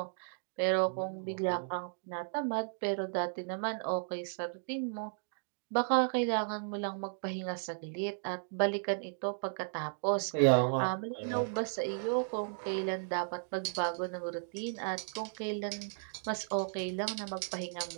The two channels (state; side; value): silent; left; digital silence